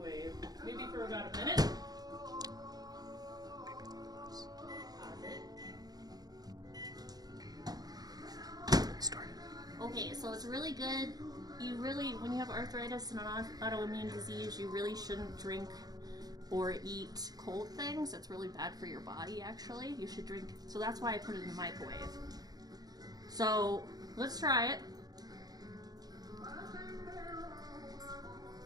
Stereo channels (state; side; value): late; left; 0.19 ms